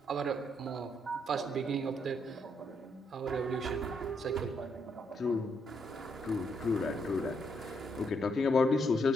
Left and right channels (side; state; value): both; normal; correlation 0.75